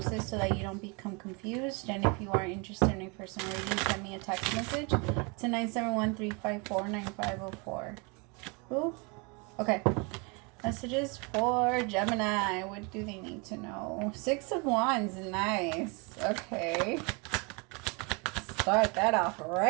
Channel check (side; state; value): left; quieter; 31.2 dB